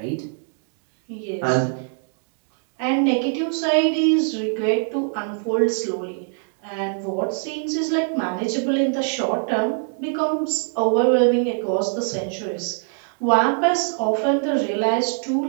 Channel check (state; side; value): silent; left; 63 dB below the other